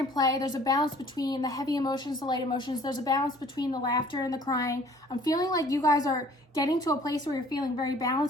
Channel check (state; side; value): normal; both; correlation 0.53